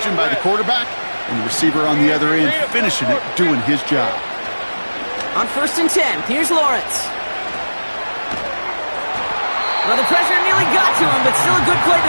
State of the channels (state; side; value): inverted; both; correlation -1.00